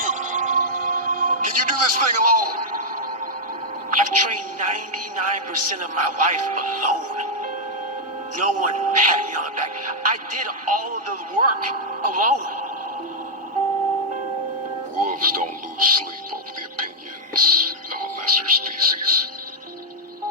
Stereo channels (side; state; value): both; normal; correlation -0.04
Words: Can you do this thing alone? I've trained 99% of my life alone. No one had me on the back. I did all of the work alone. Wolves don't lose sleep over the opinions of a lesser species.